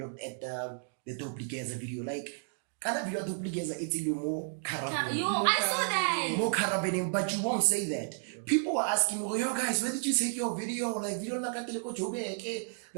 at the Duplicata video. Like, kind of video Duplicata, it's a little more carabin. I saw that. More carabin, but you won't say that. People were asking me, yo guys, where did you take your video? Like, video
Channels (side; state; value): left; silent; digital silence